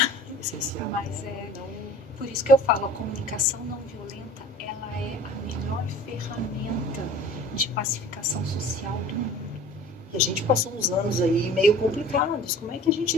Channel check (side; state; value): both; normal; correlation 0.44